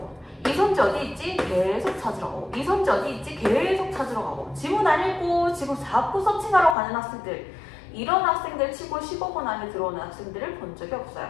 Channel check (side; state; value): right; drops out; at 6.8 s